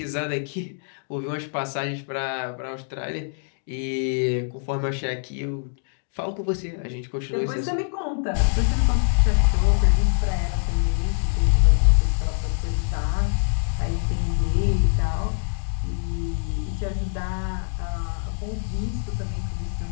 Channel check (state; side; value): silent; right; 59 dB below the other